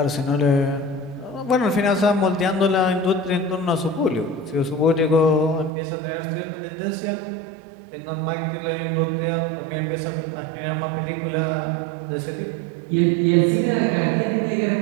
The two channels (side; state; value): left; drops out; at 5.7 s